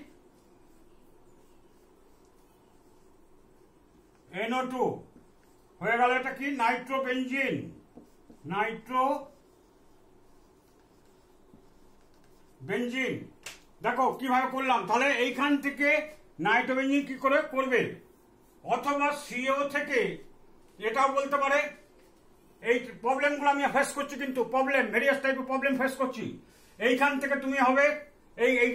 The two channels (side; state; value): both; identical; correlation 1.00